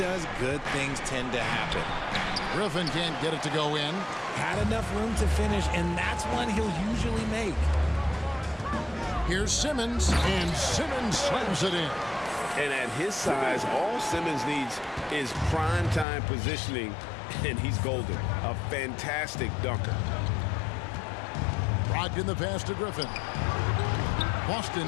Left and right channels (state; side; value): drops out; right; at 16.1 s